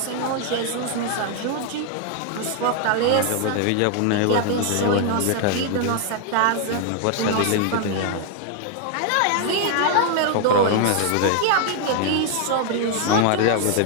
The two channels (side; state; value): both; different; correlation 0.00